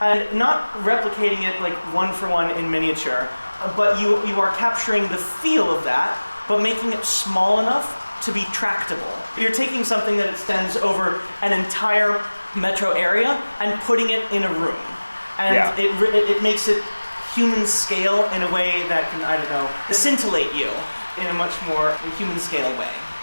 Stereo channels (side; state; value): both; inverted; correlation -1.00